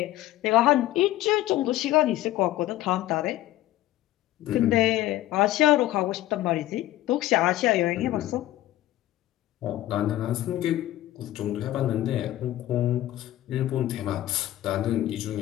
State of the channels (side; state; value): right; quieter; 14.9 dB